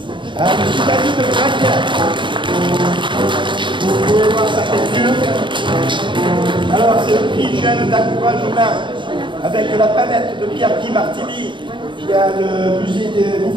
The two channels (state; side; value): late; left; 0.23 ms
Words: À M. David de Braque. Vous pouvez voir sa peinture. Alors c'est le prix jeune d'encouragement avec la palette de Pierre-Guy Martelly. Il y a le musée des